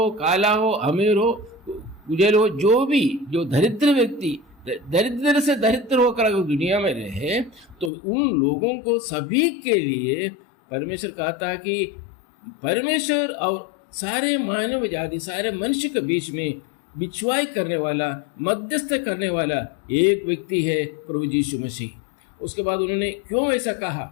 काला हो, अमीर हो, उजल हो, जो दरिद्र व्यक्ति दरिद्र से दरिद्र होकर अगर दुनिया में रहे तो उन लोगों को सभी के लिए परमेश्वर कहता है कि परमेश्वर और सारे मानव जाति सारे मनुष्य के बीच में बिछुआई करने वाला, मध्यस्थ करने वाला एक व्यक्ति है प्रभु यीशु मसीह। उसके बाद उन्होंने क्यों ऐसा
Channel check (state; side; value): drops out; right; at 7.9 s